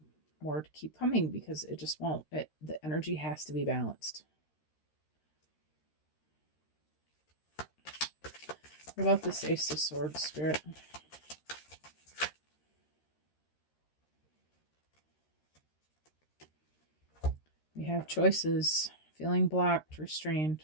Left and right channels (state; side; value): late; right; 13 ms